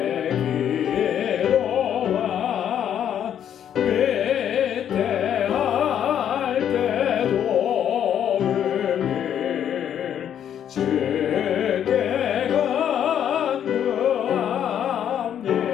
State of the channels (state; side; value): quieter; right; 9.6 dB